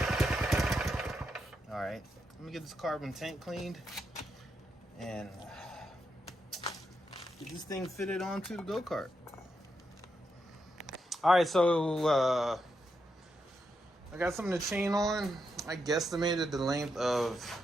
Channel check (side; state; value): both; normal; correlation 0.83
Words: All right, let me get this carbon tank cleaned and get this thing fitted onto the go-kart. All right, so I got some of the chain on. I guesstimated the length of